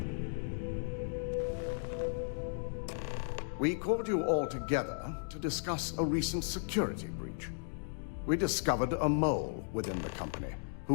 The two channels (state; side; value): silent; right; digital silence